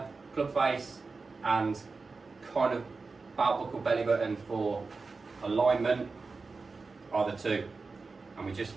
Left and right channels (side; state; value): left; quieter; 4.2 dB